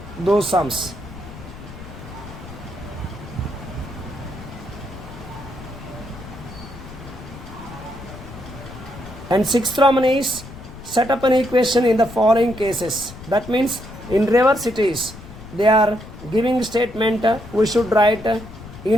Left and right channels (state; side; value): noise; left; rumble, 15 dB below the sound